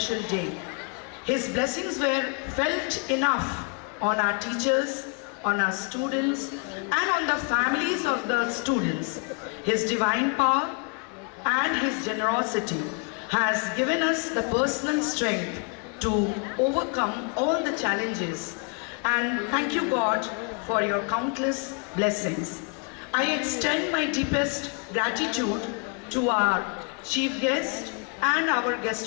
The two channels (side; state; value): right; quieter; 36.3 dB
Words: day. His blessings were felt enough on our teachers, on our students, and on the families of the students. His divine power and His generosity has given us the personal strength to overcome all the challenges. And thank you, God, for your countless blessings. I extend my deepest gratitude to our chief guest and our